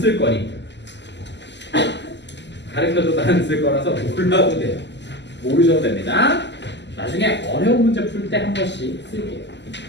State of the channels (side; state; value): right; late; 0.51 ms